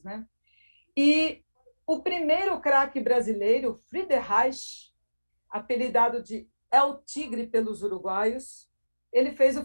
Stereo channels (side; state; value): both; inverted; correlation -1.00